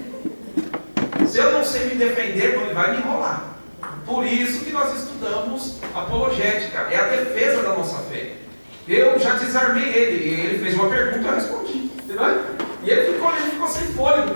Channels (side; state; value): both; inverted; correlation -1.00